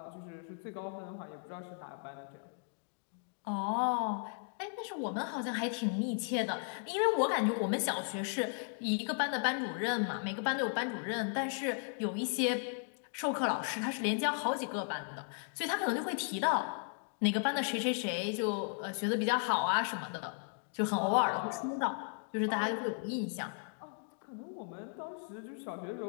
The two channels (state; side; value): silent; right; 54 dB below the other